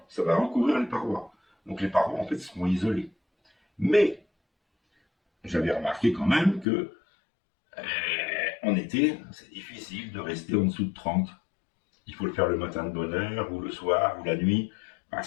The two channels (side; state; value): right; drops out; at 6.7 s